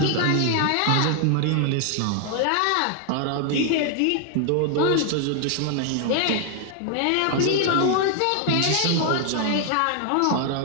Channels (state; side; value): different; both; correlation 0.00